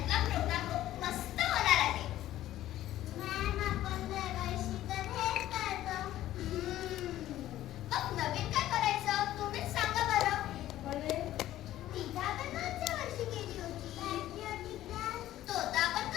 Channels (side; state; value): right; quieter; 13.7 dB